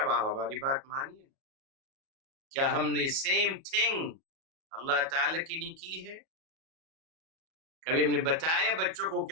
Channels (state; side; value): late; left; 37 ms